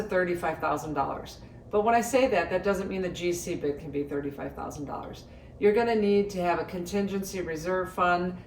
$35,000. But when I say that, that doesn't mean the GC bid can be $35,000. You're going to need to have a contingency reserve fund,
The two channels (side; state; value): both; identical; correlation 1.00